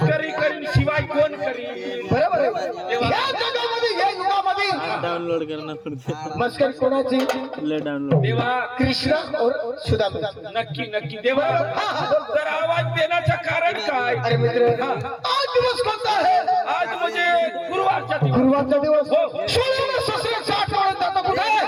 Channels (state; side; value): identical; both; correlation 1.00